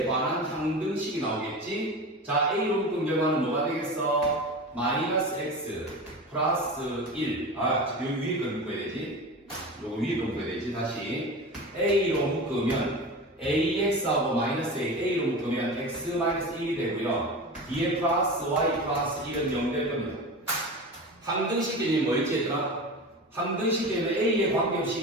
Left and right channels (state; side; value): normal; both; correlation 0.29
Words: 관한 항등식이 나오겠지? 자, A로 묶은 결과는 뭐가 되겠어? 마이너스 X 플러스 1. 여기 위에 걸 묶어야 되지? 요거 위에 걸 묶어야 되지? 다시. A로 묶으면 AX하고 마이너스 A로 묶으면 X 마이너스 1이 되고요. 뒤에 플러스 y 플러스 1은 0 될 겁니다. 항등식 개념이 뭐였지 얘들아? 항등식 개념은 A에